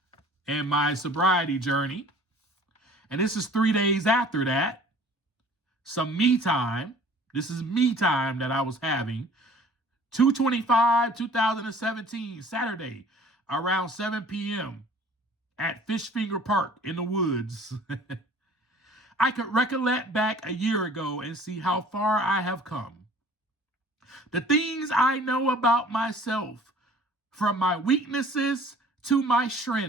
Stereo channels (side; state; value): both; normal; correlation 0.50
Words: in my sobriety journey. And this is 3 days after that. Some me time. This is me time that I was having. 2/25/2017, Saturday, around 7 p.m. at Fishfinger Park in the woods. I could recollect back a year ago and see how far I have come. The things I know about myself, from my weaknesses to my